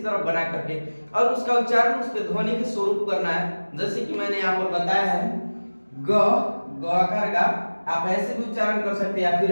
तरह बना करके, और उसका उच्चारण उसके ध्वनि के स्वरूप करना है। जैसे कि मैंने यहाँ पर बताया है ग आकार का, आप ऐसे भी उच्चारण कर सकते हैं या फिर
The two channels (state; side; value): inverted; both; correlation -1.00